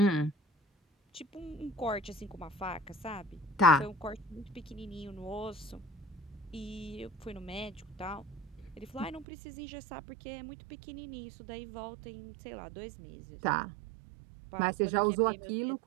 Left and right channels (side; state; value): left; drops out; at 9.2 s